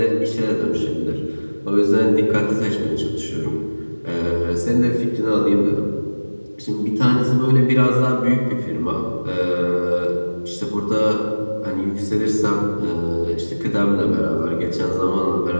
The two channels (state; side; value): inverted; both; correlation -1.00